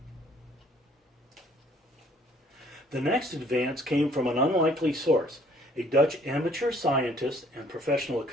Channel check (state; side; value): normal; both; correlation 0.60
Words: The next advance came from an unlikely source, a Dutch amateur scientist and professional